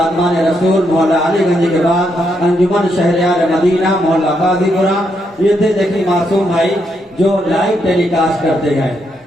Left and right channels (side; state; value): both; normal; correlation 0.78